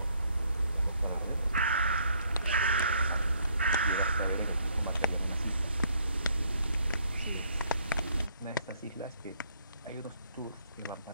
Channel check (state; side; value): inverted; both; correlation -0.67